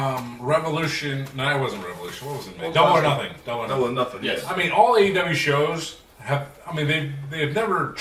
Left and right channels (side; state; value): both; identical; correlation 1.00